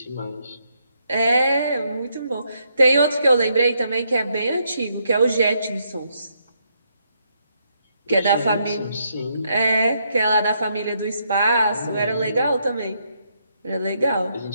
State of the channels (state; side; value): inverted; both; correlation -0.76